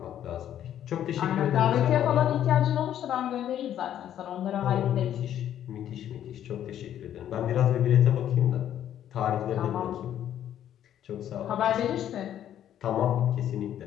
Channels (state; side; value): quieter; right; 10.8 dB